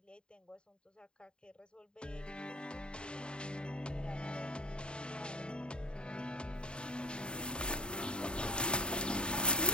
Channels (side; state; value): right; late; 0.051 ms